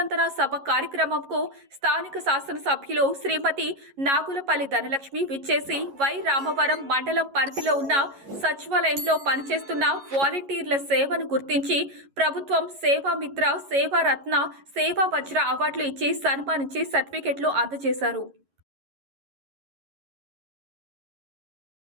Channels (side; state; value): left; late; 11 ms